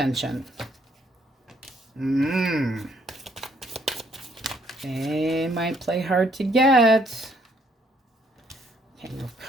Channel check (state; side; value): normal; both; correlation 0.68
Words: They might play hard to get. King of